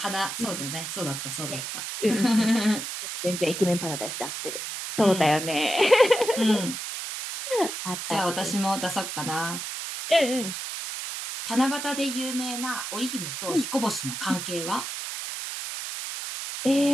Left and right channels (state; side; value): noise; right; hiss, 6 dB below the sound